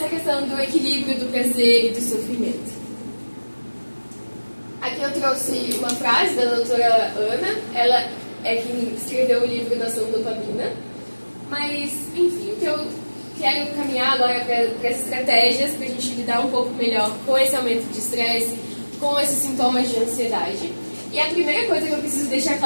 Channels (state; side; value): inverted; both; correlation -1.00